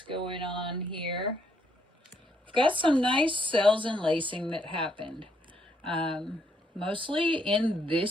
going on here. We've got some nice cells and lacing that happened. Mostly in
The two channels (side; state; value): both; normal; correlation 0.72